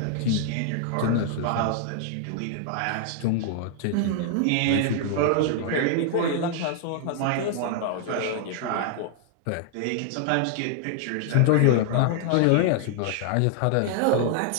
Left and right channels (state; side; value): different; both; correlation 0.00